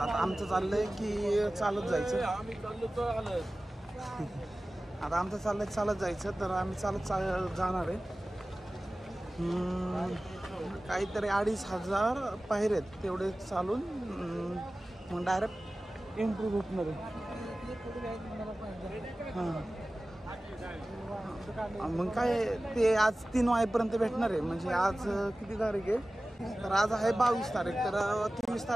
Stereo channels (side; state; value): both; normal; correlation 0.97